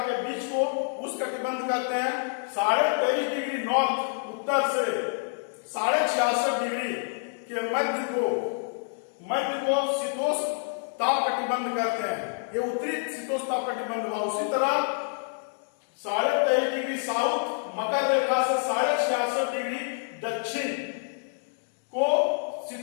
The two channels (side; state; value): right; silent; digital silence